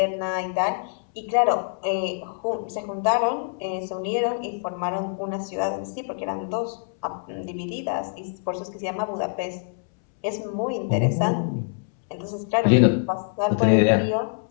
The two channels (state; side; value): silent; right; 62 dB below the other